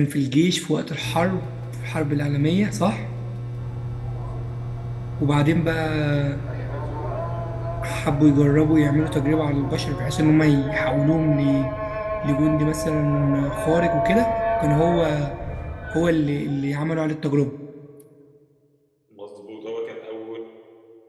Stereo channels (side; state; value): both; identical; correlation 1.00